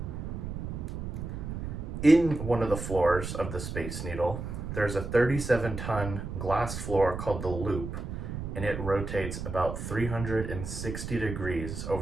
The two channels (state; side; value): noise; right; rumble, 6 dB below the sound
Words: In one of the floors of the Space Needle, there's a 37-ton glass floor called the Loop, and it rotates about 360 degrees